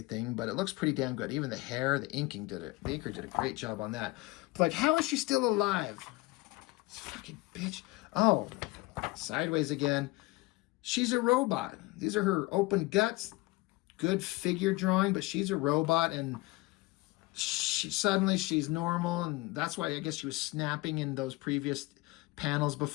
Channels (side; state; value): right; quieter; 21.7 dB